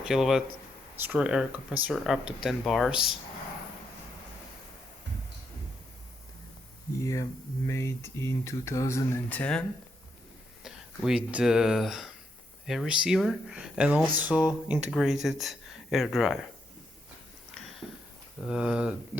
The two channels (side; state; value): both; normal; correlation 0.79